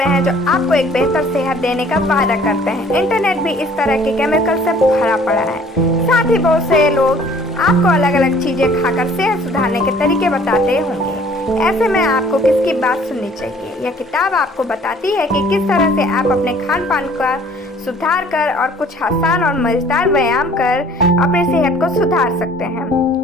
हैं जो आपको एक बेहतर सेहत देने का वादा करते हैं। इंटरनेट भी इस तरह के केमिकल से भरा पड़ा है। साथ ही बहुत से लोग आपको अलग अलग चीजें खाकर सेहत सुधारने के तरीके बताते होंगे। ऐसे में आपको किसकी बात सुननी चाहिए? यह किताब आपको बताती है कि किस तरह से आप अपने खान पान का सुधार कर और कुछ आसान और मजेदार व्यायाम कर अपनी सेहत को सुधार सकते हैं,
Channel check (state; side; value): normal; both; correlation 0.55